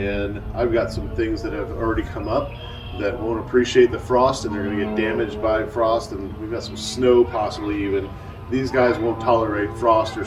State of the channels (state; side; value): identical; both; correlation 1.00